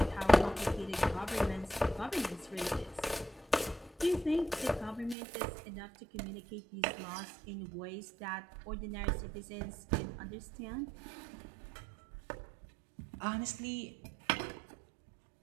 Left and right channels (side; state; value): left; drops out; at 5.2 s